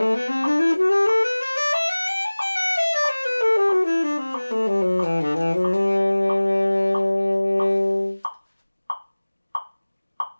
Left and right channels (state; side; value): inverted; both; correlation -1.00